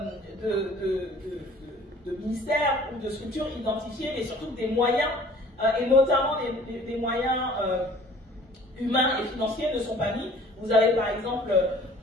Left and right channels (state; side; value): normal; both; correlation 0.51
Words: de ministères ou de structures identifiées, mais surtout des moyens, et notamment des moyens humains et financiers ne sont pas mis. Vous avez par exemple